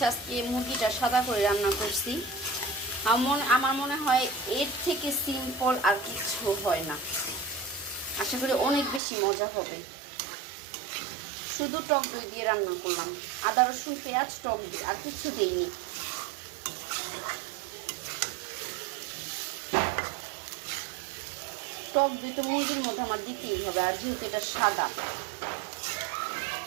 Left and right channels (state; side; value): drops out; left; at 9.0 s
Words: আজকে মুরগিটা সাদা করে রান্না করছি। আমার মনে হয় এর থেকে সিম্পল আর কিছু হয় না। আশা করি অনেক বেশি মজা হবে। শুধু টক দই দিয়ে রান্না করলাম, আদা রসুন পেঁয়াজ টক দই, আর কিছু দেইনি। টক দই তো মুরগির মধ্যে আমার দিতেই হবে, আর যেহেতু এটা সাদা।